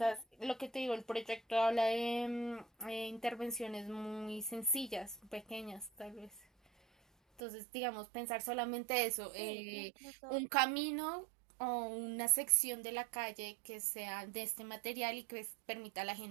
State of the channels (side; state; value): left; drops out; at 7.4 s